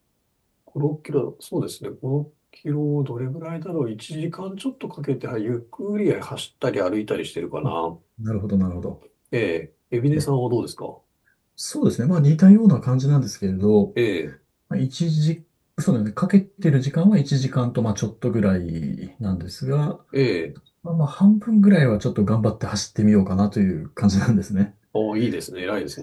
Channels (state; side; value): identical; both; correlation 1.00